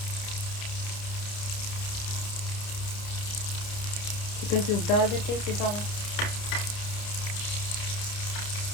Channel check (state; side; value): late; right; 29 ms